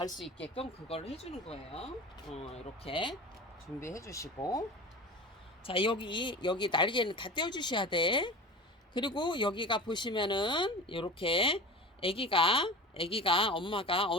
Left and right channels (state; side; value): normal; both; correlation 0.34